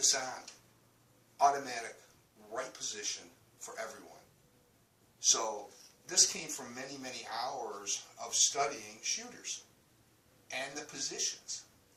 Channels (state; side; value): identical; both; correlation 1.00